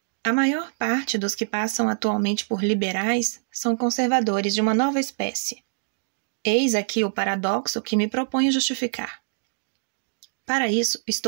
A maior parte dos que passam atualmente por liberais são conservadores de uma nova espécie. Eis aqui o paradoxo que me proponho justificar. Para isso,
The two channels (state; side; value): silent; left; digital silence